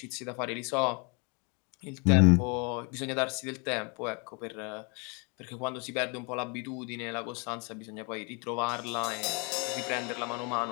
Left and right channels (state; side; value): quieter; right; 33.9 dB